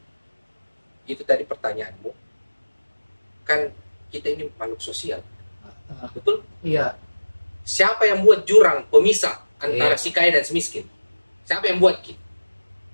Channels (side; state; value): both; inverted; correlation -1.00